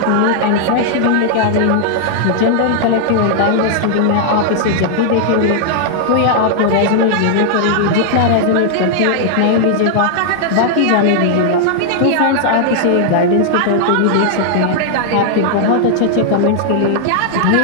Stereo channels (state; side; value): different; both; correlation -0.01